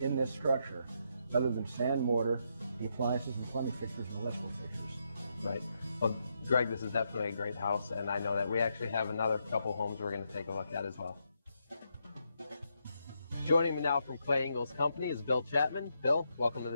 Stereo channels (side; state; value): both; inverted; correlation -0.80